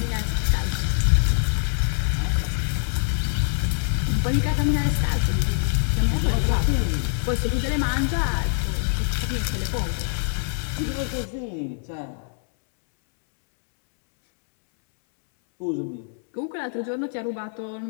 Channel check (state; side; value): silent; right; 62 dB below the other